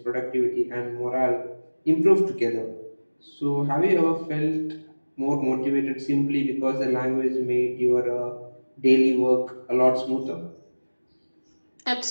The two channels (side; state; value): both; inverted; correlation -1.00